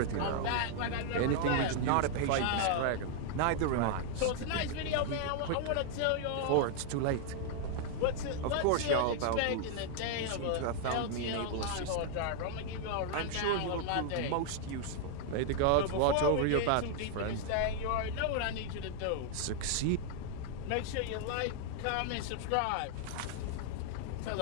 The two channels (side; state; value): both; different; correlation 0.00